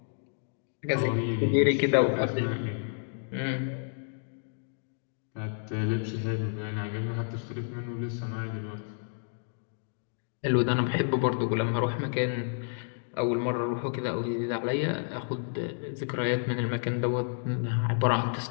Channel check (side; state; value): right; silent; digital silence